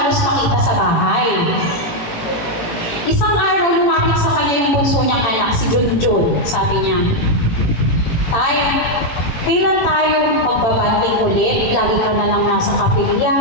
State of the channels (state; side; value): late; right; 18 ms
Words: makita sa bahay. Isang araw, lumapit sa kanya yung bunso niyang anak, si Junjun. Sabi niya, Tay, kailan tayo magbabanding ulit? Lagi ka na lang nasa kapilya.